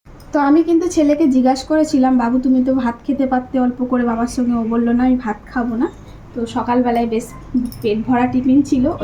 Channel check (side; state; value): both; identical; correlation 1.00